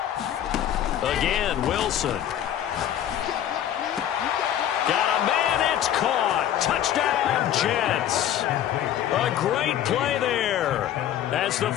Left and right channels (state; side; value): quieter; right; 11.0 dB